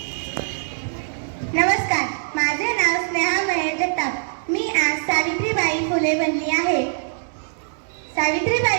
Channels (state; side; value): silent; left; digital silence